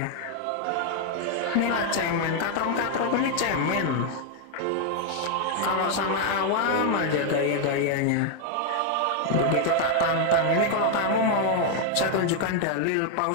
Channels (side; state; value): both; different; correlation 0.00